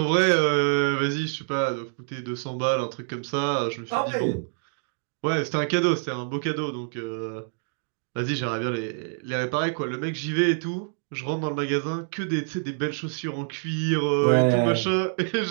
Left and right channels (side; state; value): left; silent; digital silence